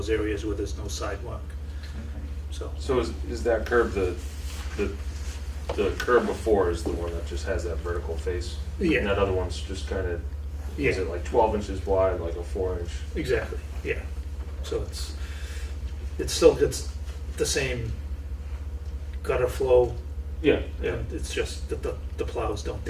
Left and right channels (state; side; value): identical; both; correlation 1.00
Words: areas where there's no sidewalk, so. So is that curb the curb before is the one that just has that vertical face? Yeah. And that other one's just kind of, Yeah. is it like 12 inches wide, like a 4-inch? Exactly, yeah. So it still gets the same gutter flow, Yeah, and it's just that the plows don't